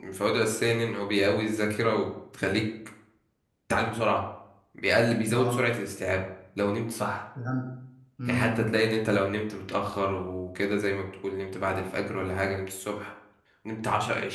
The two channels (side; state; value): both; identical; correlation 1.00